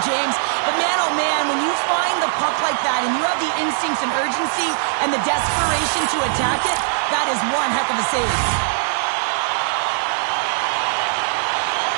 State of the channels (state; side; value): silent; left; digital silence